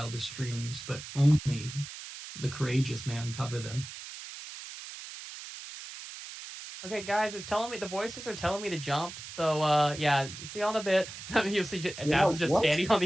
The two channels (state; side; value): noise; right; hiss, 12 dB below the sound